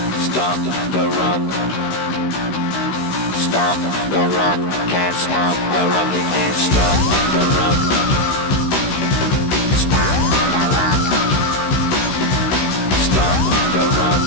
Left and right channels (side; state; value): right; late; 16 ms